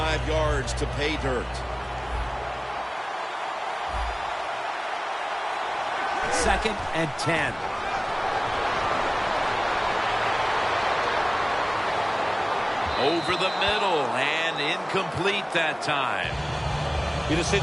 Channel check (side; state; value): both; identical; correlation 1.00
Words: yards to pay dirt. 2nd and 10. Over the middle and incomplete that time. In a